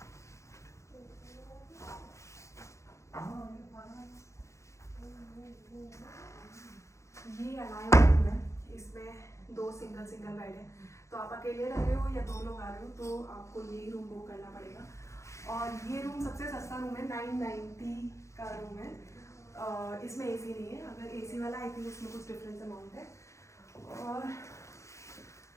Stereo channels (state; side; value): late; right; 0.14 ms